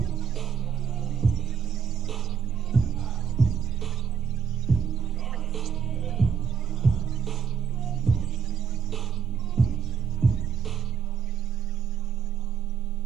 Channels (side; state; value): left; quieter; 7.0 dB